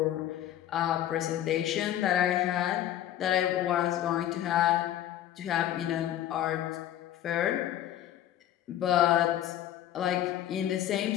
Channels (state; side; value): quieter; right; 12.0 dB